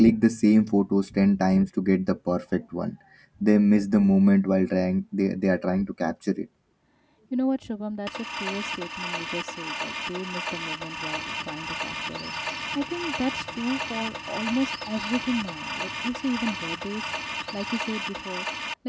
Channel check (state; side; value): identical; both; correlation 1.00